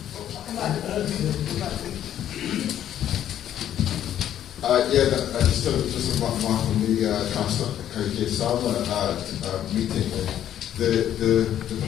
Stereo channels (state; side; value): quieter; right; 10.9 dB